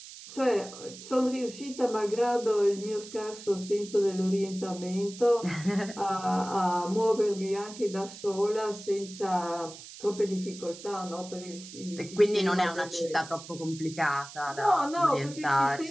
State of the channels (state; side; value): noise; right; hiss, 15 dB below the sound